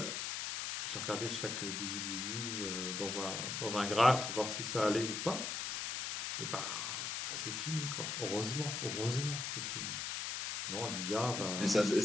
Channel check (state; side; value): noise; left; hiss, 3 dB below the sound